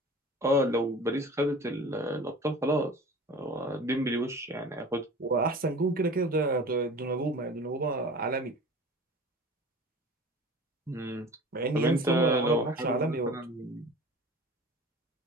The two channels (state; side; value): normal; both; correlation 0.40